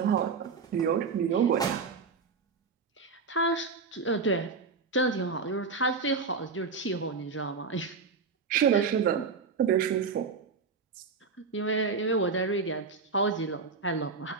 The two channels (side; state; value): left; quieter; 4.9 dB